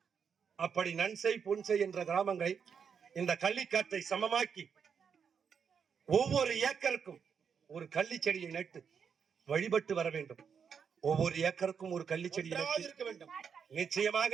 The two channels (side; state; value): left; quieter; 6.8 dB